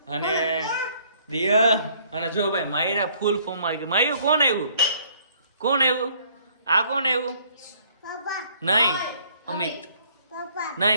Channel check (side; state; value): both; inverted; correlation -0.61